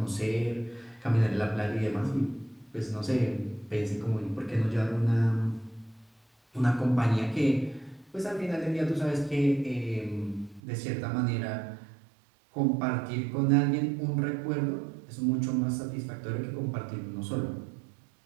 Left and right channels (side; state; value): left; drops out; at 10.6 s